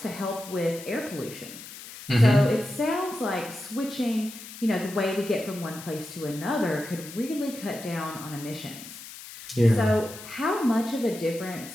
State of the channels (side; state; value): left; noise; hiss, 14 dB below the sound